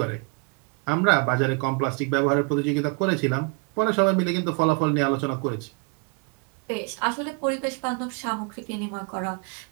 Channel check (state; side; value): quieter; left; 31.9 dB